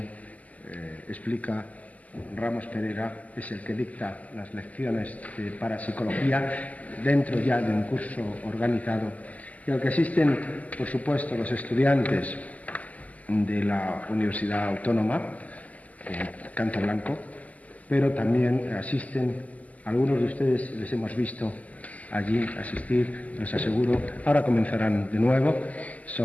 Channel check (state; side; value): late; right; 0.075 ms